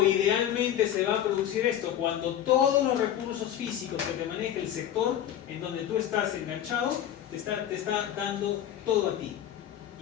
idealmente se va a producir esto? Cuando todos los recursos físicos que te maneja el sector en donde tú estás enganchado te está dando todo a ti.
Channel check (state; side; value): quieter; right; 10.8 dB